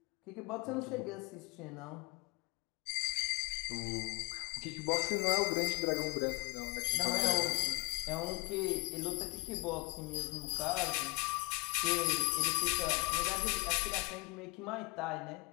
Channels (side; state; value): right; quieter; 26.8 dB